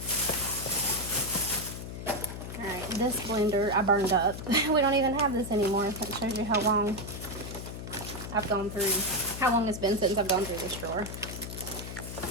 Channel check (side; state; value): left; noise; hum, 8 dB below the sound